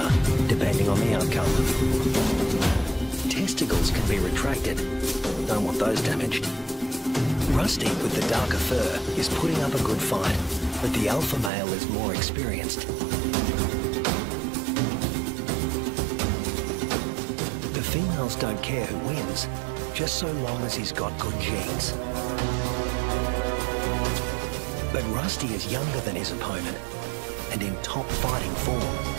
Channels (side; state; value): left; drops out; at 11.5 s